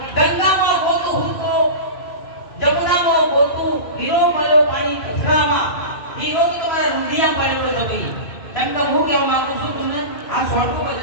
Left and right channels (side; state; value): right; late; 2.5 ms